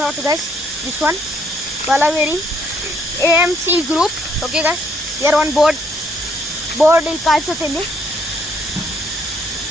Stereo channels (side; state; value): both; normal; correlation 0.69